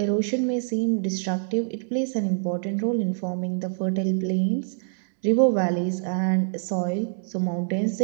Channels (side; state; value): left; silent; digital silence